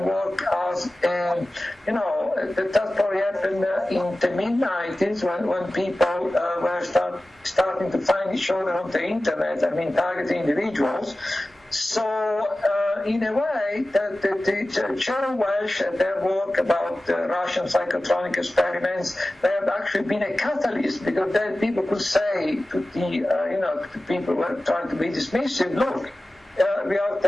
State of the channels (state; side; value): normal; both; correlation 0.96